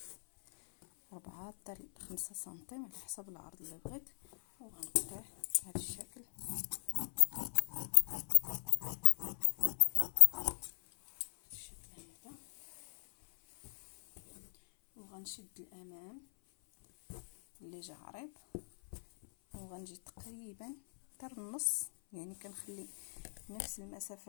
4 حتى 5 سنتيم على حسب العرض اللي بغيت، وغنقطع بهذا الشكل هذا. وغنشد الامام اللي جا عريض وغنجي تقريبا حتى النص، يعني كنخلي نفس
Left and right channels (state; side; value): silent; right; 52 dB below the other